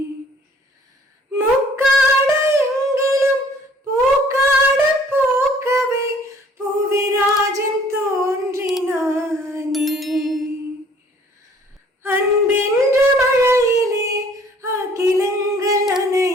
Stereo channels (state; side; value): normal; both; correlation 0.56